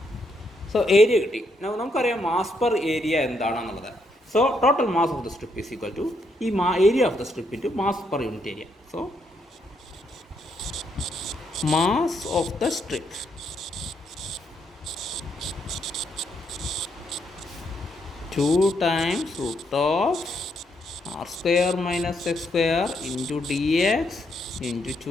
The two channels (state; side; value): normal; both; correlation 0.76